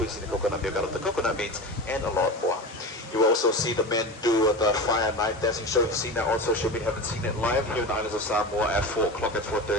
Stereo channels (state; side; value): normal; both; correlation 0.28